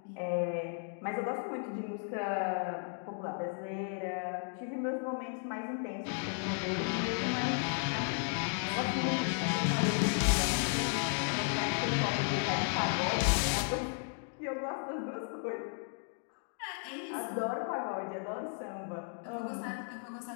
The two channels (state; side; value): silent; right; 55 dB below the other